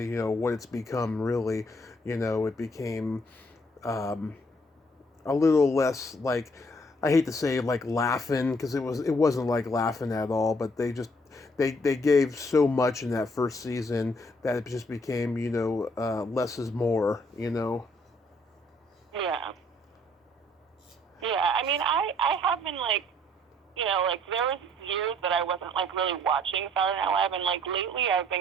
it's become. Really, it became a little less like, I hate to say like laughing, because it wasn't like laughing at all, but they gave so much in that first season that it just became less is more. Yeah. Yeah, I mean, I have been, like, there was years that I wasn't, like, really watching Saturday Night Live, and, like, lately I've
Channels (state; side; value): normal; both; correlation 0.64